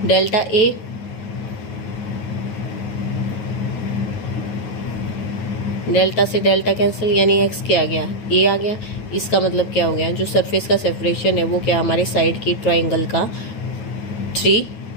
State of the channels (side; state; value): right; late; 9.4 ms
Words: delta A delta से डेल्टा कैंसिल, यानी एक्स क्या आ गया ए आ गया। इसका मतलब क्या हो गया, जो सरफेस का सेपरेशन है वो क्या हमारे साइड की ट्राइंगल का 3